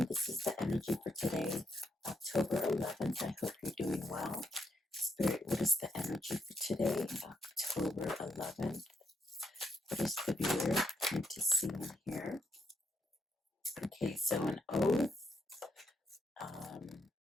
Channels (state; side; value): normal; both; correlation 0.77